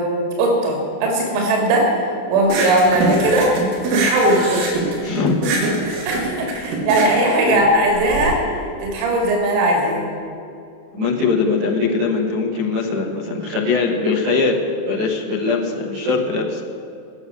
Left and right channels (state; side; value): late; left; 27 ms